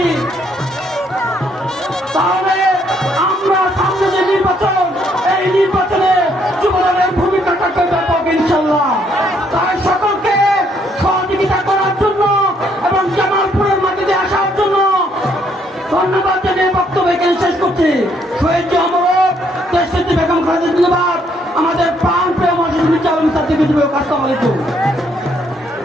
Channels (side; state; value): both; normal; correlation 0.70